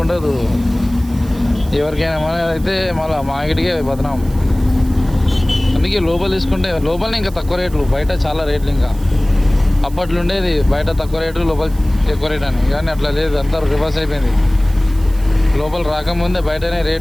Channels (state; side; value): noise; right; hiss, 22 dB below the sound